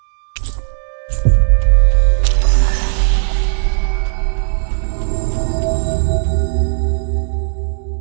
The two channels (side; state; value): left; silent; digital silence